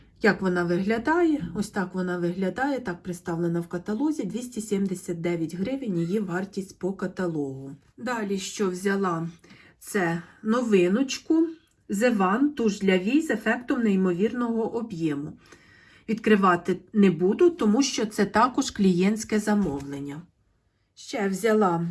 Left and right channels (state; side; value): identical; both; correlation 1.00